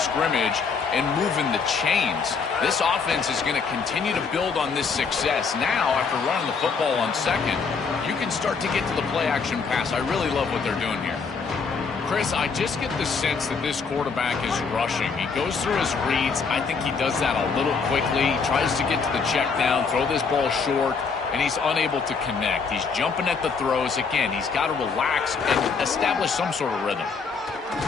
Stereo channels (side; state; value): right; quieter; 5.2 dB